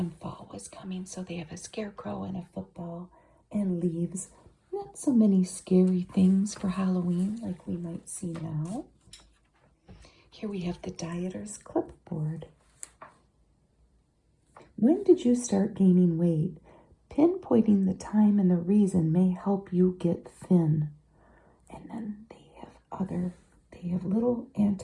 fall was coming, so they have a scarecrow and a football and leaves. Not so many scary things for Halloween like we might see now. Here we have the Dieter's Clipboard. When did you start gaining weight? Pinpointing the time and the reason may help you get thin. And then they have little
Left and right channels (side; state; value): both; identical; correlation 1.00